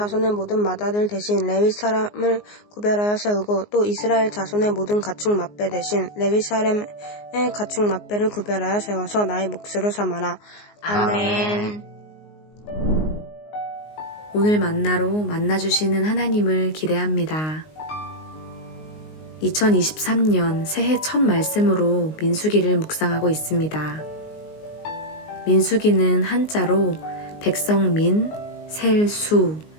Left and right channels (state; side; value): late; right; 19 ms